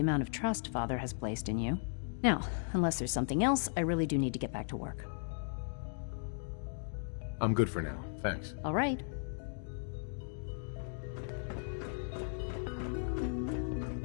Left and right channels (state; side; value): silent; right; digital silence